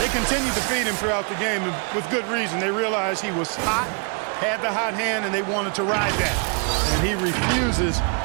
continued to feed him throughout the game, and with good reason. They realized he was hot, had the hot hand, and they wanted to ride that. And he refuses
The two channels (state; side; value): quieter; left; 37.8 dB